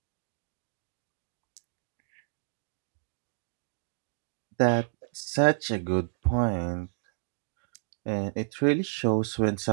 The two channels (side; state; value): left; silent; digital silence